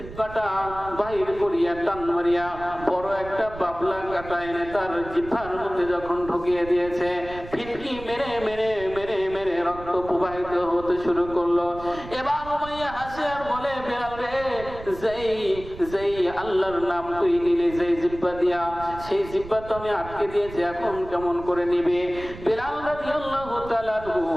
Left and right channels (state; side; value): noise; right; rumble, 14 dB below the sound